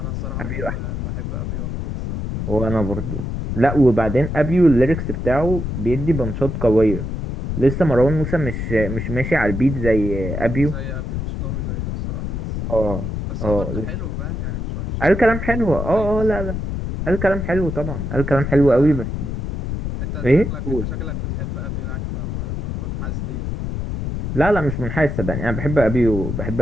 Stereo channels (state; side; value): noise; left; rumble, 4 dB below the sound